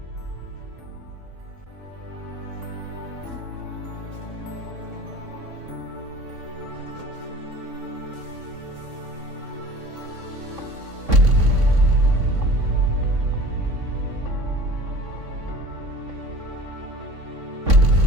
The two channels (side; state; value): left; late; 3.6 ms